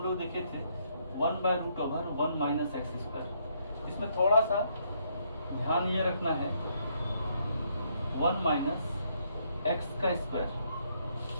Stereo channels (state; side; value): inverted; both; correlation -0.72